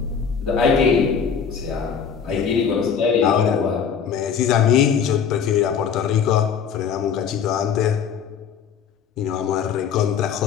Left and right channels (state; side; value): quieter; right; 7.2 dB